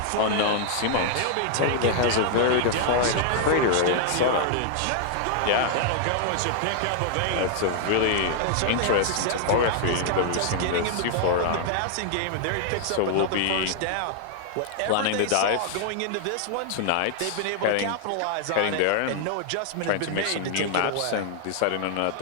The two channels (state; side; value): different; both; correlation -0.01